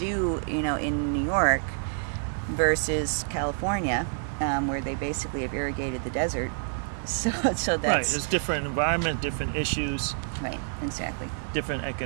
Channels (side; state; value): left; silent; 59 dB below the other